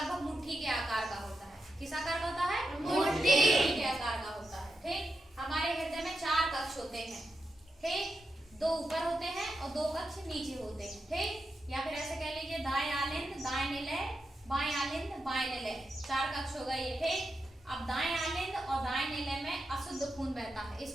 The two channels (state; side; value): normal; both; correlation 0.87